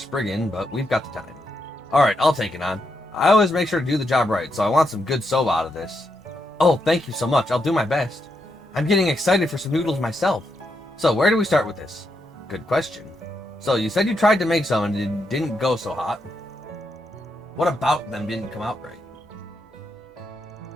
but we've got the time. Alright, I'll take it on. I always make sure to do the job right, so I want some good soba out of this. Oh, thank you so much. I'll do my best. I'm getting excited for some noodles myself. So, where do we start with this? Good question. So, you said you tried to make some and it didn't go so hot. What about them didn't come out right?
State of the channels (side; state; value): both; normal; correlation 0.82